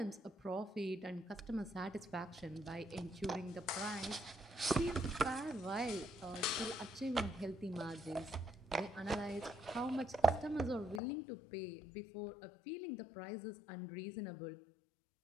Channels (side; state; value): right; drops out; at 11.0 s